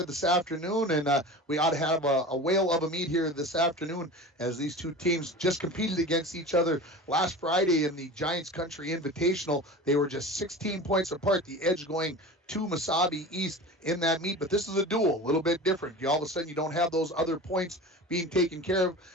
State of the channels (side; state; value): both; normal; correlation 0.34